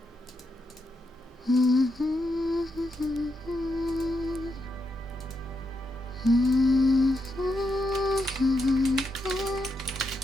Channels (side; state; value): both; normal; correlation 0.83